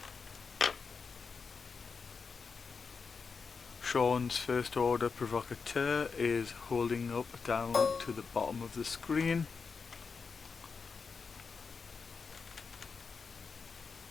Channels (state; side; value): quieter; right; 5.2 dB